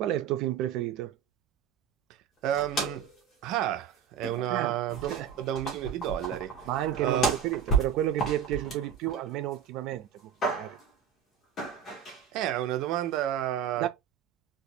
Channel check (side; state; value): left; quieter; 8.3 dB